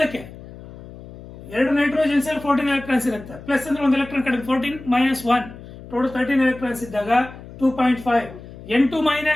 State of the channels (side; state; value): left; noise; hum, 16 dB below the sound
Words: 2 ನೈಟ್ರೋಜನ್ಸ್ ಅಲ್ಲಿ 14 electrons ಇರುತ್ತೆ, ಪ್ಲಸ್ ಅಂದ್ರೆ ಒಂದು ಎಲೆಕ್ಟ್ರಾನ್ ಕಡಿಮೆ. 14 ಮೈನಸ್ 1, ಟೋಟಲ್ 13 electrons ಇದ್ದಾಗ 2.5. N2